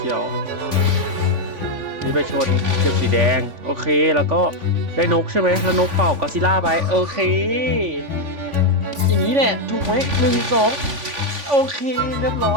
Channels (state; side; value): late; left; 3.5 ms